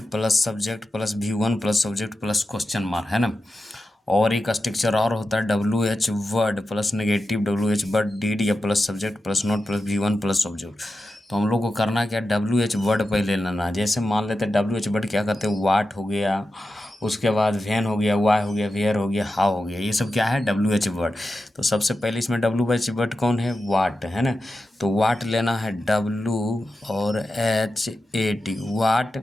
plus subject plus V1 plus subject plus question mark, है ना। और एक स्ट्रक्चर और होता है WH word plus negative WH word did या plus subject plus not plus V1 plus subject. तो हम लोग को करना क्या, WH वर्ड पहले लेना है। जैसे मान लेते हैं WH वर्ड क्या करते हैं, वाट हो गया, उसके बाद वैन हो गया, वाई हो गया, वेयर हो गया, हाउ हो गया, ये सब क्या है WH वर्ड। तो सबसे पहले इसमें WH वर्ड कौन है, वाट, है ना। तो वाट लेना है W और HAT, वाट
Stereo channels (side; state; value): both; normal; correlation 0.91